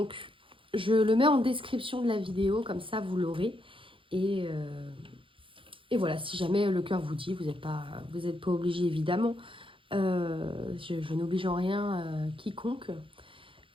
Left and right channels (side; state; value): left; late; 0.25 ms